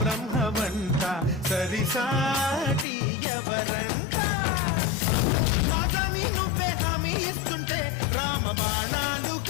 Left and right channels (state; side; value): drops out; right; at 2.9 s